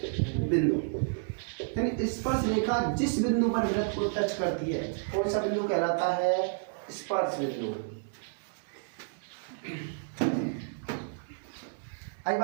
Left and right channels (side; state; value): left; silent; 57 dB below the other